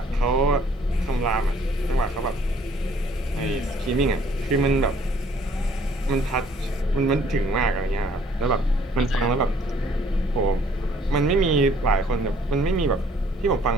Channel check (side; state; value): both; normal; correlation 0.60